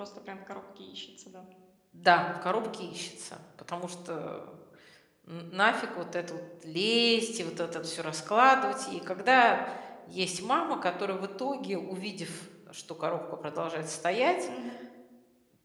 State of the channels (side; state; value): both; identical; correlation 1.00